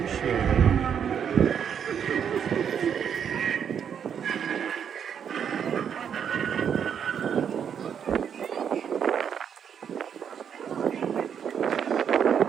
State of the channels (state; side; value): quieter; left; 8.0 dB